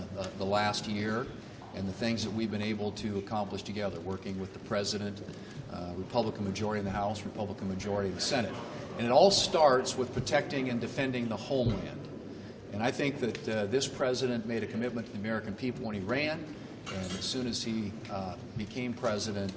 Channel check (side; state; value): both; identical; correlation 1.00